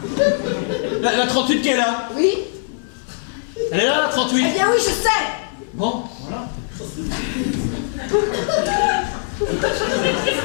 La 38 qui est là. Oui. Elle est là, la 38. Eh bien oui, je sais. Bon, voilà.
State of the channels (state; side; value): silent; right; digital silence